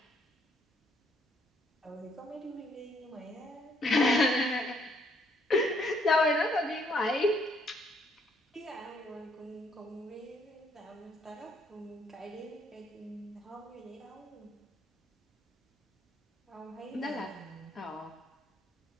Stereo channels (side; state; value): both; normal; correlation 0.68